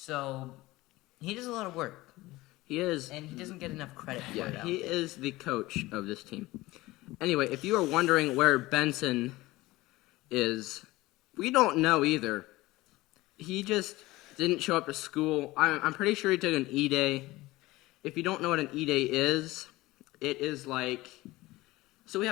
he does a lot of work. He is. And he doesn't get enough credit for it. Yeah, he is the coach of this team. Anyway, if you are wondering where Benson is, we don't know either. He just didn't show up to school. I'm pretty sure he took an E-Day. If you don't know what an E-Day is, it is like... So we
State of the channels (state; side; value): quieter; right; 19.2 dB